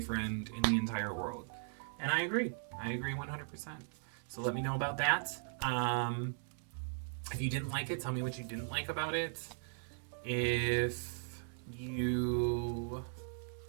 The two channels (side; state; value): left; silent; digital silence